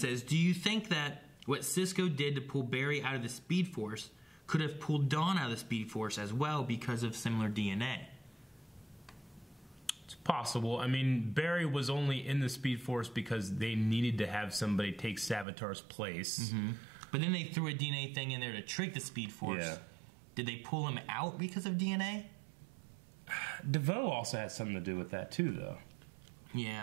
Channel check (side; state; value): left; drops out; at 15.5 s